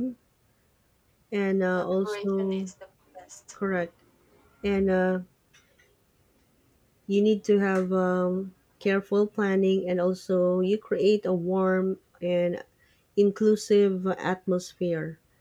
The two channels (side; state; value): both; identical; correlation 1.00